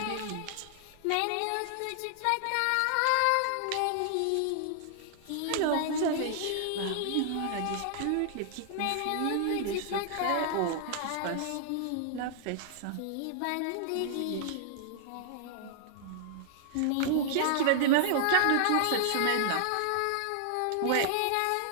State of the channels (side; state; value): both; different; correlation -0.01